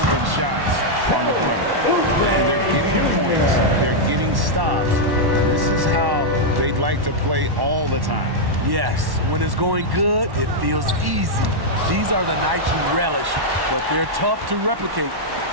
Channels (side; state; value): left; late; 1.1 ms